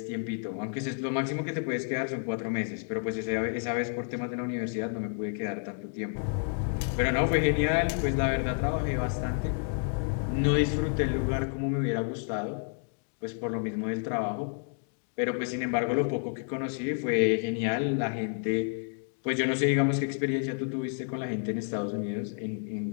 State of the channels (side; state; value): right; silent; 56 dB below the other